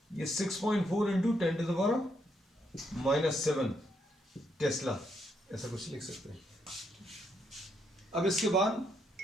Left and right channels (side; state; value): both; normal; correlation 0.76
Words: ये 6.4 into 10 to the power -7 Tesla, ऐसा कुछ लिख सकते हैं। अब इसके